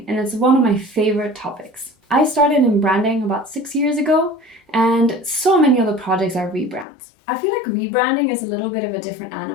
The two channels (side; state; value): right; drops out; at 6.9 s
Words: and it's one of my favorite topics. I started in branding about 6 years ago, and so many other projects are rebrands. I feel like rebranding is a little bit of a different